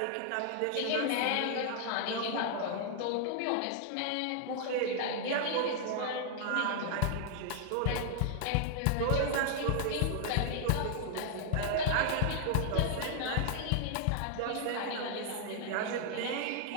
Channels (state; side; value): different; both; correlation 0.00